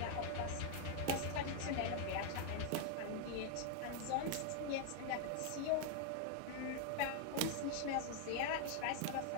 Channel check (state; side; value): different; both; correlation 0.00